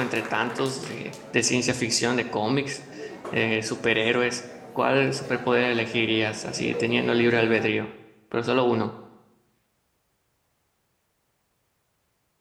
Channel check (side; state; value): both; identical; correlation 1.00